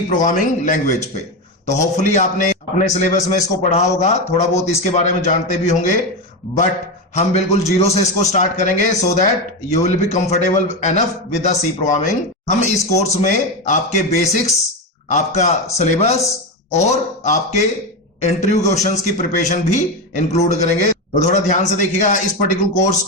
प्रोग्रामिंग लैंग्वेज पे। तो होपफुली आपने अपने सिलेबस में इसको पढ़ा होगा, थोड़ा बहुत इसके बारे में जानते भी होंगे, बट हम बिल्कुल जीरो से इसको स्टार्ट करेंगे so that you will be comfortable enough with the C programming. हम इस कोर्स में आपके बेसिक्स, आपका सिलेबस और आपके इंटरव्यू क्वेश्चंस की प्रिपरेशन भी इंक्लूड करेंगे। तो थोड़ा ध्यान से देखिएगा, इस पर्टिकुलर कोर्स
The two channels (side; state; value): both; normal; correlation 0.14